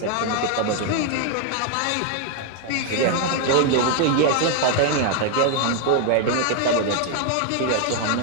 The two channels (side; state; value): both; different; correlation 0.01